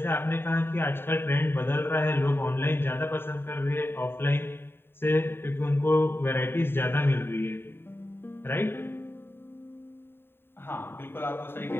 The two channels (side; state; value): right; late; 0.11 ms